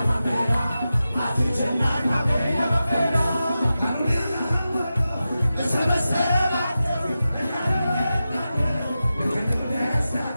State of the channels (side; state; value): both; inverted; correlation -0.92